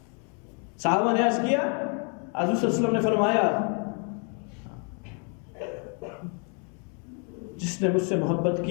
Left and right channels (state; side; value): quieter; right; 38.8 dB